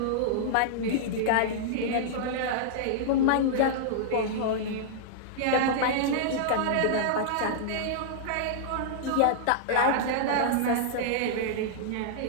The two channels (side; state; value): both; different; correlation -0.02